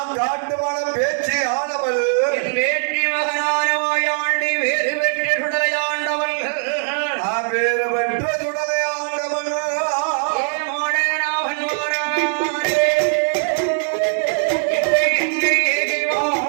காட்டுவன பேச்சு ஆனவள் என் வேற்றி மகனான மாயாண்டி வேறு பெற்ற சுடலை ஆண்டவள் வேறு பெற்ற சுடலை ஆண்டவள்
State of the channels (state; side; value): silent; left; 64 dB below the other